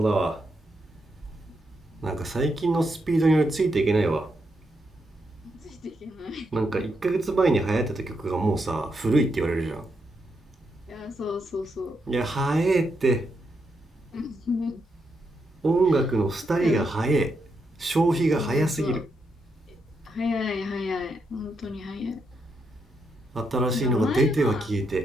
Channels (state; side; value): normal; both; correlation 0.81